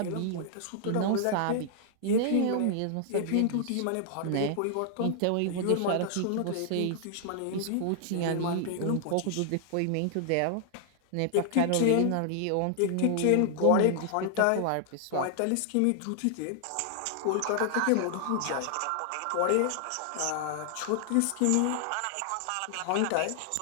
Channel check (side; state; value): both; different; correlation -0.01